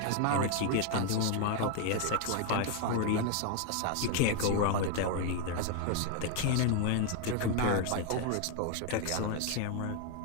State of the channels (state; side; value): different; both; correlation 0.01